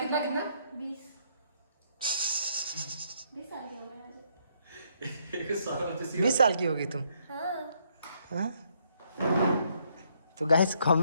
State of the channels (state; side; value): inverted; both; correlation -0.71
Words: साल की उम्र है। 20 साल की होगी तुम? हाँ। हाँ? तो गाइस